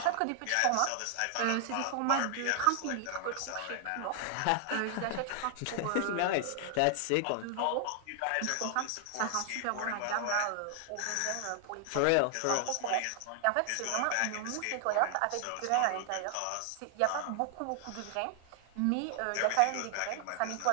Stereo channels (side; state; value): both; different; correlation 0.00